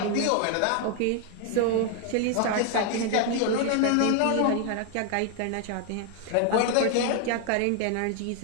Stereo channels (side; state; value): both; different; correlation 0.00